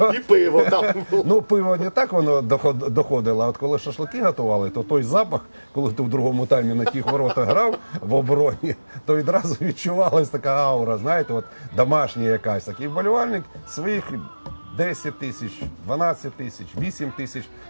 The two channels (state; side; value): inverted; both; correlation -1.00